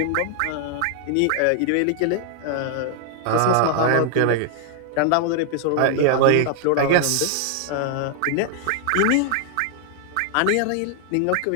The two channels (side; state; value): both; different; correlation 0.00